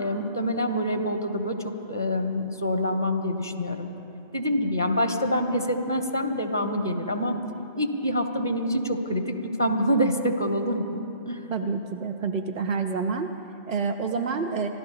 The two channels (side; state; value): both; inverted; correlation -0.57